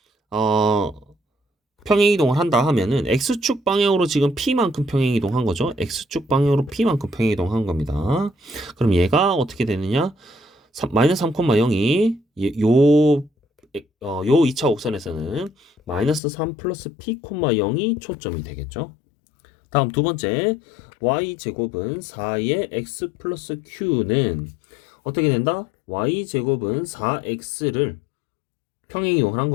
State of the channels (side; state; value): right; drops out; at 16.2 s